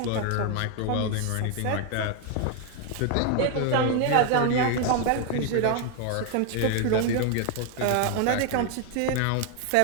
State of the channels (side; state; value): both; different; correlation 0.01